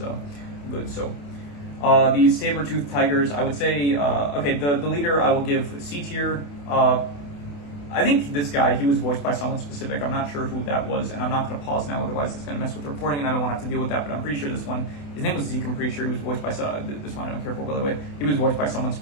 good. So these saber-toothed tigers, I would say, okay, the leader I will give C tier. I think this guy, he was voiced by someone specific. I'm not sure who that was, and I'm not going to pause now, otherwise it's going to mess with the recording, and I don't want to have to deal with that, but I'm pretty sure this one, his name was Zeke, I'm pretty sure he was voiced by, this one I don't care for, by the way. He was voiced by someone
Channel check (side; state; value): right; late; 28 ms